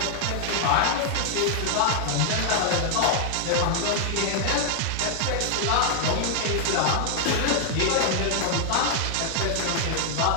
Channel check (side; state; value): both; different; correlation 0.00